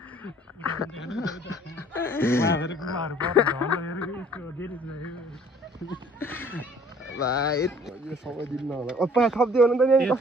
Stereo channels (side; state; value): both; normal; correlation 0.56